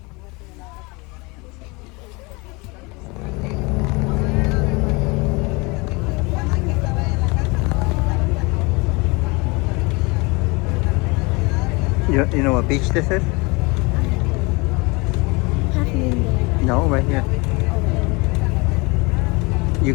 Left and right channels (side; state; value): right; quieter; 26.9 dB